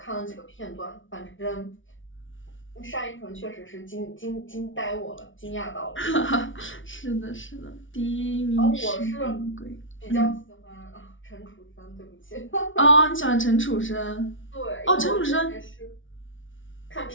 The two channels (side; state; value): right; late; 0.56 ms